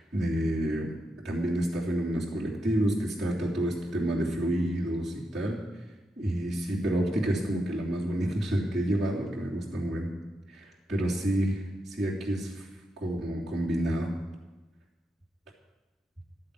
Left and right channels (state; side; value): normal; both; correlation 0.84